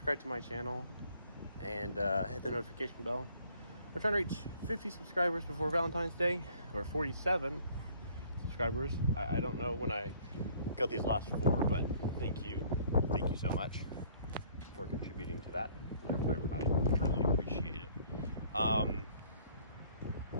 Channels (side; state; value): both; inverted; correlation -0.58